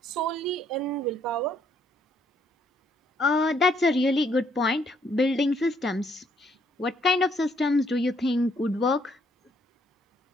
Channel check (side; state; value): both; normal; correlation 0.69